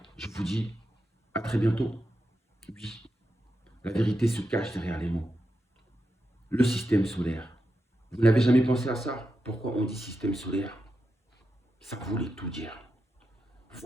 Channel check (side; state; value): both; normal; correlation 0.87